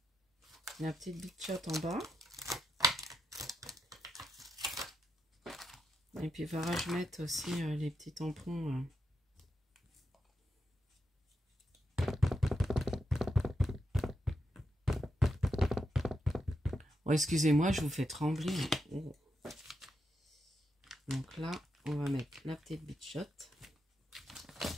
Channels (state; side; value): normal; both; correlation 0.84